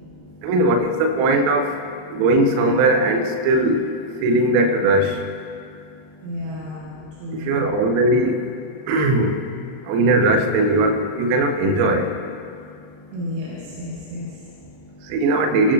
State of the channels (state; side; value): late; left; 39 ms